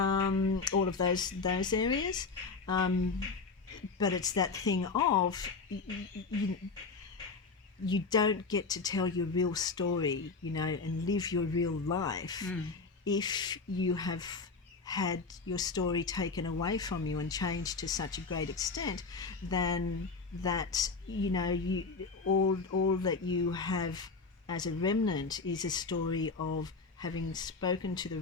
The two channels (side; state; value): right; quieter; 4.3 dB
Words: of those areas, but it's that thing of you don't get to tell your real story, and live your real life if you have had your story taken away from you and changed to such a great extent then that, all that you have as a remnant is a story of having spoken to the